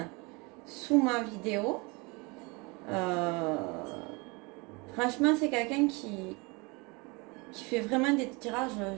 sous ma vidéo. Euh, Franchement, c'est quelqu'un qui fait vraiment des tirages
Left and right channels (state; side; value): quieter; left; 27.7 dB